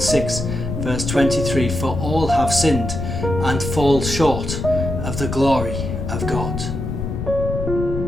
6 verse 23, for all have sinned and fall short of the glory of God.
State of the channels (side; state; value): left; noise; rumble, 4 dB below the sound